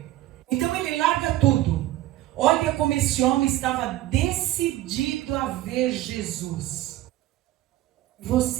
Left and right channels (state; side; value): quieter; left; 15.2 dB